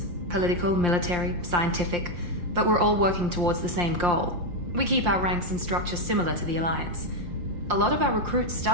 Political, military, scientific. But we're all working towards the same goal. We keep our ranks and structure similar to the Alliance. A lot of our recruits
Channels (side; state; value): left; late; 5.7 ms